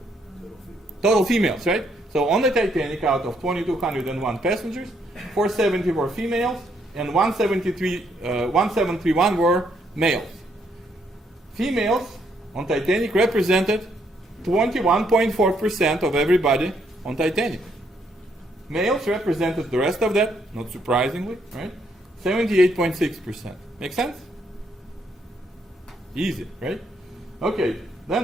Total females, right? So on the Titanic, out of 2,201 passengers, 470 were females, and 1,731 were males. Females on Titanic represented 21.4% of everybody on Titanic. Males represented the rest of that, not surprisingly, right? 78.6%. Make sense? Easy, right? Okay,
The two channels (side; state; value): both; normal; correlation 0.72